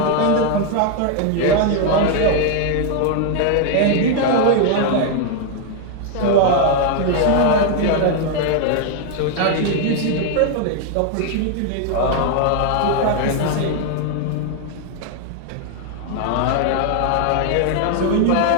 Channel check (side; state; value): both; different; correlation 0.00